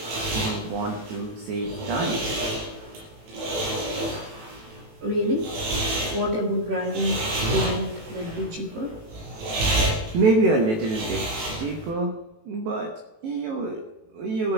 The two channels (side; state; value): left; late; 18 ms